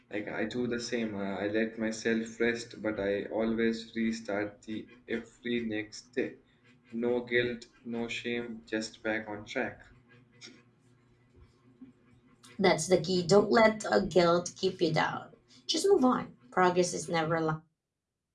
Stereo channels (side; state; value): both; identical; correlation 1.00